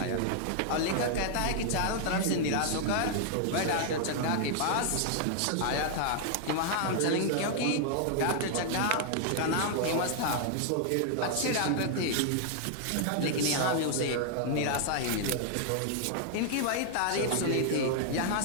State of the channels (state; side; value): different; both; correlation 0.00